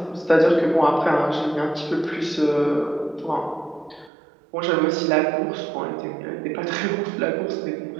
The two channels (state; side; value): drops out; left; at 4.1 s